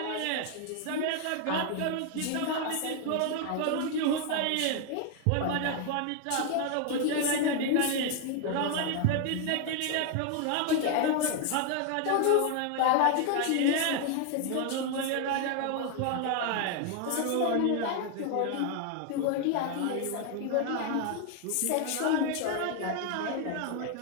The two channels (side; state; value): both; different; correlation 0.00